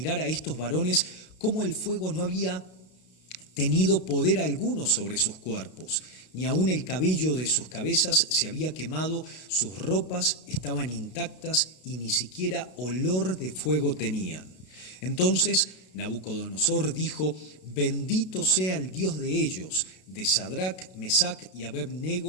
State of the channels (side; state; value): right; late; 32 ms